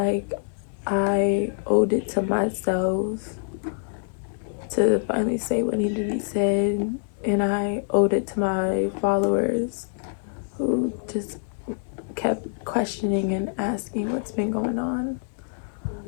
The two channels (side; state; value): right; silent; digital silence